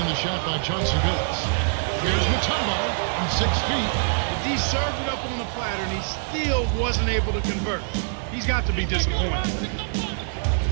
the shot by Chauncey Billups. Here's Mutombo from 6 feet. He served it up on the platter, and he still wasn't able to convert. He's got to be disappointed.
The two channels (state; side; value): silent; left; digital silence